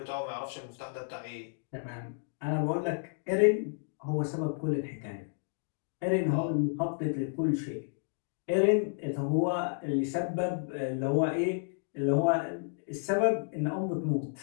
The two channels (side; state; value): right; silent; digital silence